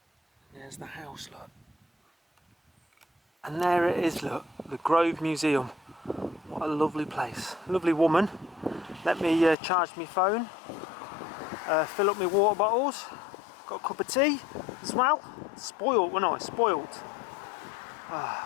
There's the house, look. And there it is, look, the Grove Museum. What a lovely place. Lovely woman. Let me charge my phone. Fill up my water bottles. Got a cup of tea as well. Spoiled, wasn't I? Spoiled.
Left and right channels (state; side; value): drops out; right; at 9.6 s